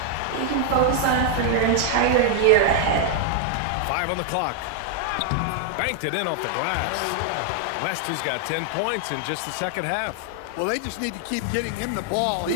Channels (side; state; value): both; different; correlation 0.00